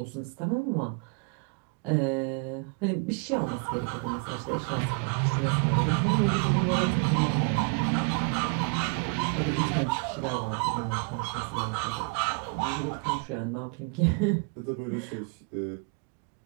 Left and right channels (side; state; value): left; quieter; 34.5 dB